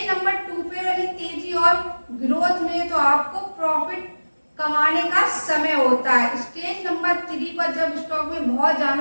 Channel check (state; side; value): inverted; both; correlation -1.00